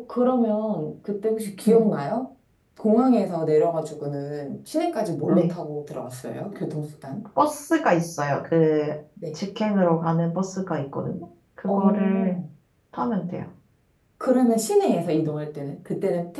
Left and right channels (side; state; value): both; identical; correlation 1.00